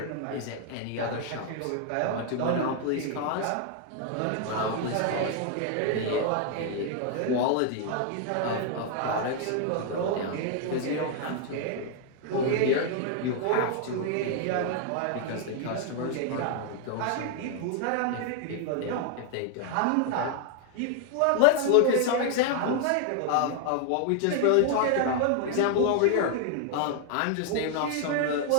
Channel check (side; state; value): both; different; correlation 0.00